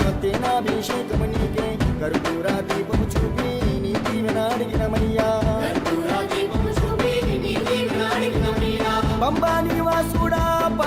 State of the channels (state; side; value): identical; both; correlation 1.00